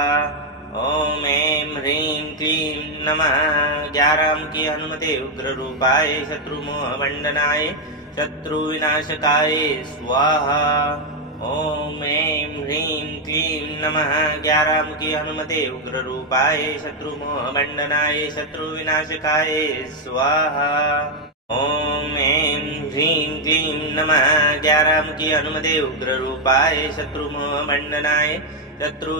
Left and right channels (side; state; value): both; normal; correlation 0.02